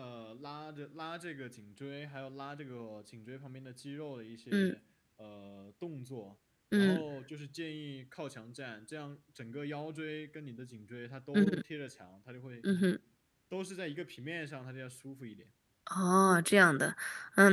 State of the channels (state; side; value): identical; both; correlation 1.00